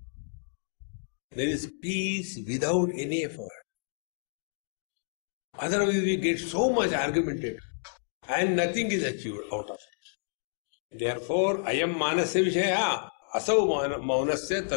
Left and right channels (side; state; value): right; silent; digital silence